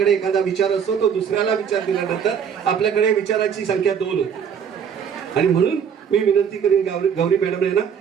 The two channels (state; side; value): quieter; left; 7.5 dB